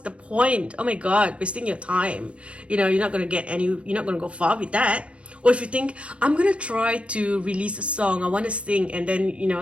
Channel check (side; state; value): left; late; 0.061 ms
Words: point? Oh my God, wasting your time. You're not going to go far with that. Or if you think, I'm going to try to release a song, I want to sing, and